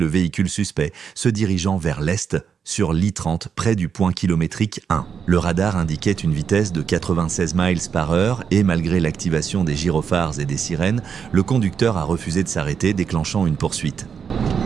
véhicule suspect se dirigeant vers l'est sur l'I-30 près du point kilométrique 1. Le radar indiquait une vitesse de 96 miles par heure et malgré l'activation des gyrophares et des sirènes, le conducteur a refusé de s'arrêter, déclenchant une poursuite.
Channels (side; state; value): left; quieter; 6.9 dB